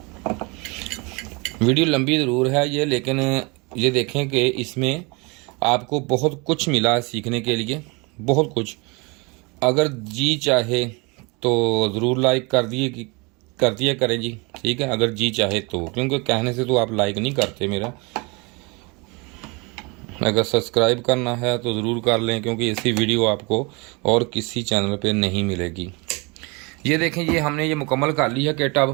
वीडियो लंबी ज़रूर है ये, लेकिन ये देखें कि इसमें आपको बहुत कुछ मिला सीखने के लिए, बहुत कुछ। अगर जी चाहे तो ज़रूर लाइक कर दिया करें जी, ठीक है, अगर जी चाहे तो, क्योंकि कहने से तो आप लाइक नहीं करते मेरा। अगर सब्सक्राइब करना है तो ज़रूर कर लें, क्योंकि ऐसी वीडियो आपको और किसी चैनल पे नहीं मिलेगी। ये देखें, ये हमने ये मुकम्मल कर ली है किट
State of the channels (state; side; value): quieter; left; 28.6 dB